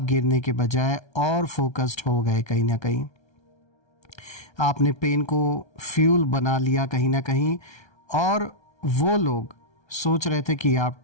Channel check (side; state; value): right; late; 1.3 ms